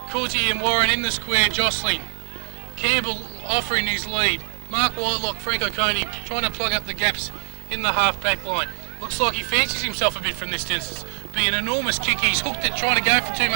Cooley and Warren in the square jostling. Campbell offering his lead. Mark Whitelock, Frank O'Coney trying to plug up the gaps in the half-back line. Looks like he fancies himself a bit from this distance. Be an enormous kick. He's hooked it, trying to go for too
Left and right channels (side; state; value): left; silent; digital silence